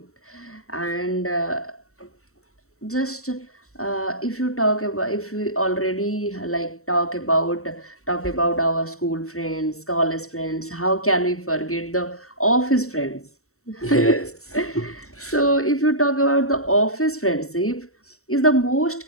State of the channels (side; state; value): right; late; 0.64 ms